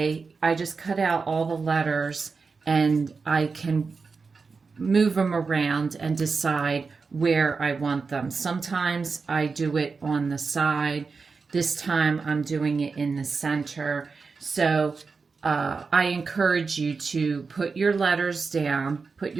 I just cut out all the letters and I can move them around and decide where I want them. Sometimes I do it on the side. This time I'm doing it in the center. So I encourage you to put your letters down, put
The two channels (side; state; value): left; quieter; 4.7 dB